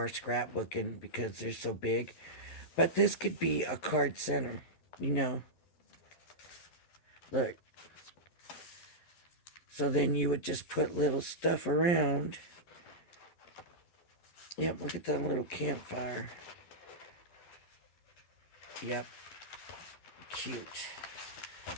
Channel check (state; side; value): late; right; 11 ms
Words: scrapbooking because they're so big. But this could be a card center. You know. Look. So then you would just put little stuff around. Yep, look at that little campfire. Yep. Cute.